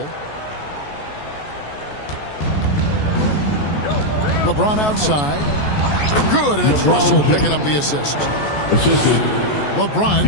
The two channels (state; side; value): late; right; 14 ms